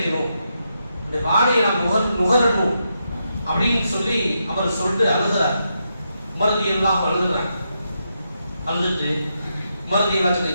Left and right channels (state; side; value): inverted; both; correlation -0.83